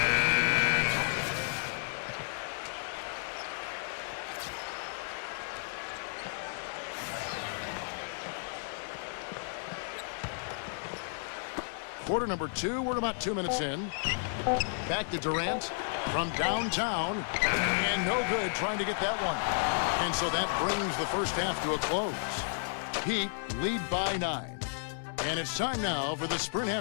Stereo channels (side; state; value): right; silent; 56 dB below the other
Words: Quarter number 2. We're about 2 minutes in. Back to Durant from downtown. And no good trying to get that one. And so that brings the first half to a close. Heat lead by 9. And it's time now for the Sprint